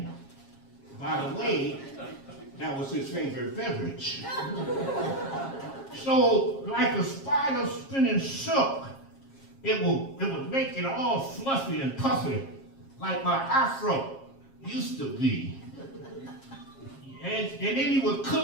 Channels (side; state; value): right; late; 7.4 ms